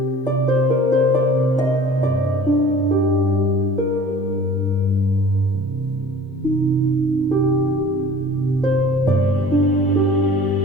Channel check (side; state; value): both; normal; correlation 0.45